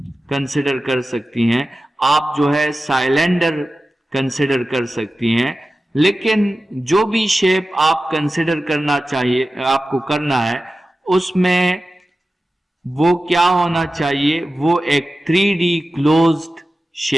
कंसिडर कर सकती हैं, आप जो है साइलेंडर कंसिडर कर सकती हैं। लेकिन जो भी शेप आप कंसिडर करना चाहिए, आपको करना है, उसमें वो क्या होना चाहिए, वो एक 3D क्लोज्ड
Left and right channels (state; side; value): normal; both; correlation 0.94